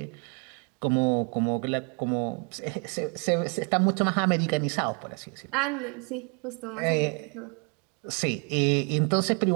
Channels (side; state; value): left; quieter; 37.2 dB